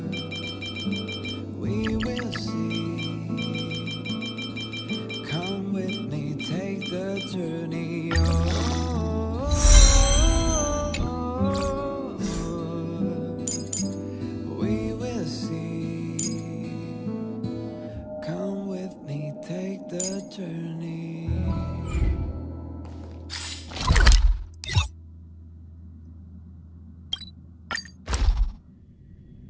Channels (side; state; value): both; identical; correlation 1.00